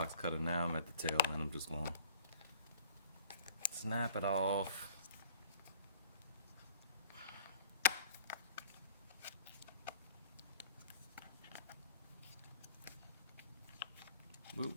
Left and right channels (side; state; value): both; inverted; correlation -0.52